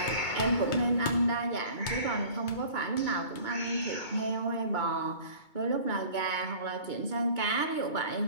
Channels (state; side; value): late; right; 2.2 ms